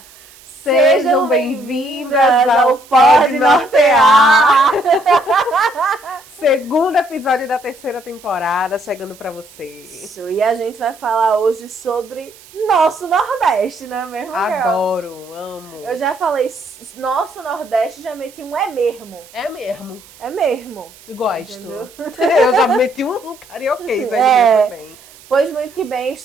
Sejam bem-vindas ao Pode Nortear! Segundo episódio da terceira temporada chegando pra vocês. Isso, e a gente vai falar hoje sobre nosso Nordeste, não é mesmo, Carol? Adoro, amo. Eu já falei nosso Nordeste, já meti um é mesmo. É mesmo. É mesmo. Gosto. Entendeu? Eu já meti um carioquês aí também. Pois muito que bem,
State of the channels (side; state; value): right; noise; hiss, 24 dB below the sound